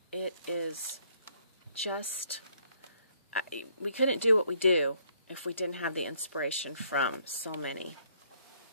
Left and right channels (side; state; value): both; inverted; correlation -0.67